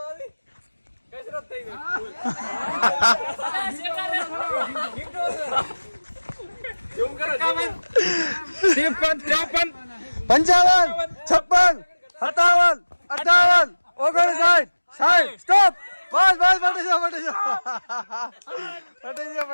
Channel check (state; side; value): inverted; both; correlation -1.00